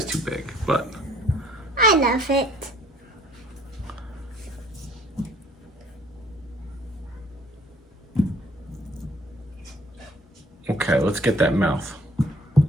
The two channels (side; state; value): both; normal; correlation 0.59